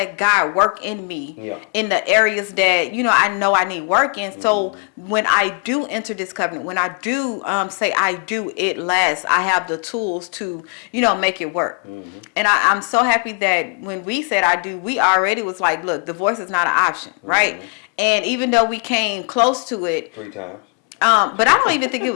God work in me in the areas that, I know I need work in. So when I do enter this covenant, when I do say I do, it lasts. I have the tools to, make it work. And I'm so happy that when we said I do, we already was like, look, divorce is not an option, right? And even though we came close to it. 3 times. But I don't even think it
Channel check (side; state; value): right; quieter; 37.2 dB